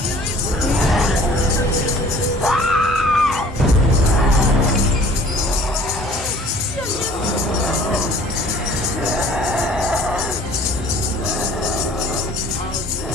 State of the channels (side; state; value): both; normal; correlation 0.51